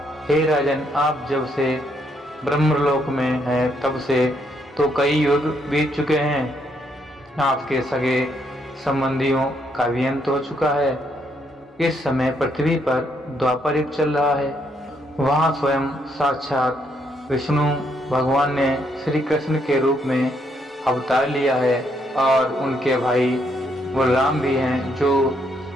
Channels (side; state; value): both; normal; correlation 0.74